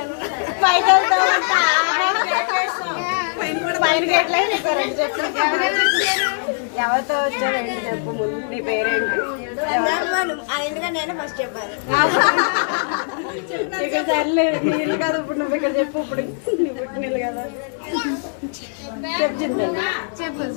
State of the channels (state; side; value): silent; right; digital silence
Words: ఎవరితో వచ్చావు ఏంటి చెప్పు. ముందు నీ పేరేంటి? ఆయనగా నేను ఫస్ట్ చెప్పాను. ఇక సర్లే నీళ్ళు కదా ఇప్పుడు నువ్వు ఇక్కడ చెప్పు. ఇప్పుడు నువ్వు పుట్టినీళ్ళు కదా చెప్పు చింతల్లి. చెప్పు